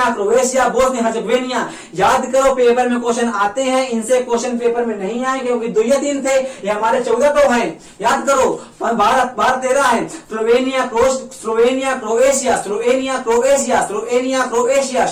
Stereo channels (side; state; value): both; identical; correlation 1.00